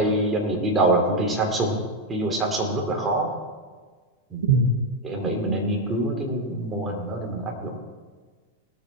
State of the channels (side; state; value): both; normal; correlation 0.05